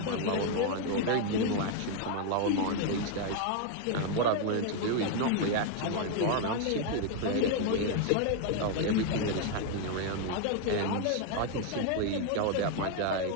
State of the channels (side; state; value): both; different; correlation 0.01